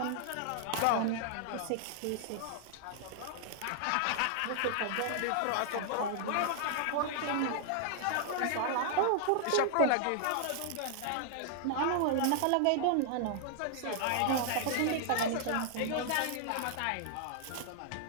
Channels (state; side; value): different; both; correlation -0.01